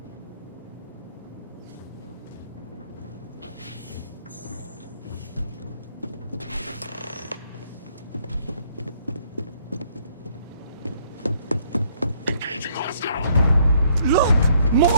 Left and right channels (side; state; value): both; inverted; correlation -0.66